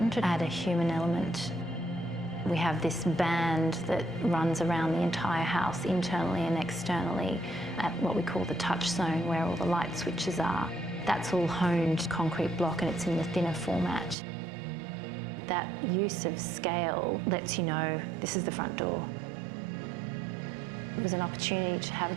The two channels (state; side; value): drops out; left; at 14.2 s